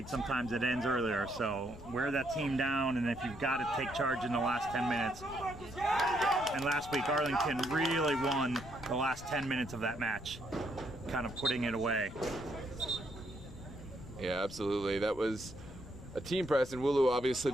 sometimes it ends earlier, so wear that team down, and if you've got to take charge in the last 10 minutes. And last week, Arlington really won the last 10 minutes of that match, kind of putting it away. Yeah, absolutely. That was a team press, and Wulu obviously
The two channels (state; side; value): noise; left; rumble, 15 dB below the sound